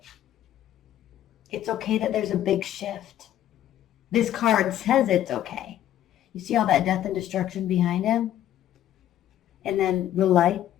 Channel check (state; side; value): quieter; right; 11.9 dB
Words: It's okay that there's a big shift. This card says it's okay. You see all that death and destruction behind him? And then the light